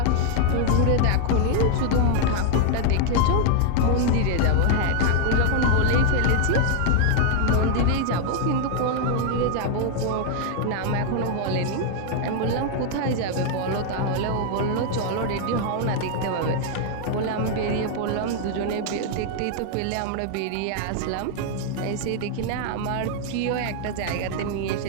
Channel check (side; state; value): both; different; correlation 0.00